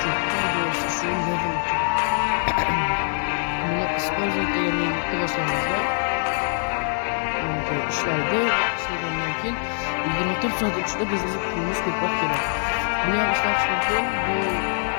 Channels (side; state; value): right; silent; 63 dB below the other